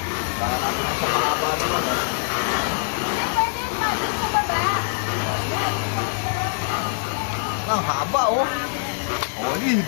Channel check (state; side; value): silent; right; digital silence